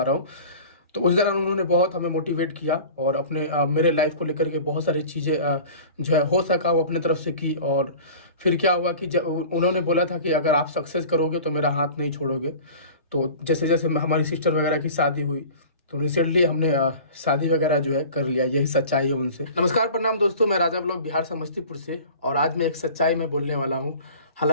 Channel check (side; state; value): both; inverted; correlation -0.41